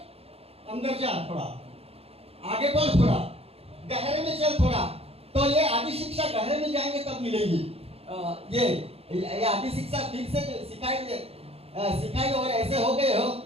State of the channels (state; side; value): late; left; 0.29 ms